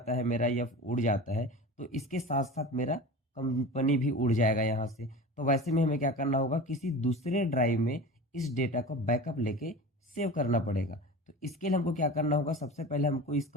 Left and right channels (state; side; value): normal; both; correlation 0.33